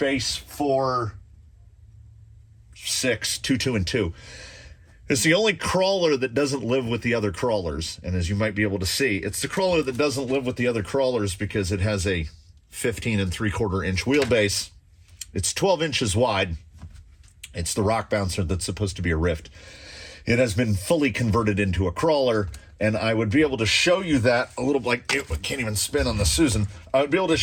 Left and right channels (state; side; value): identical; both; correlation 1.00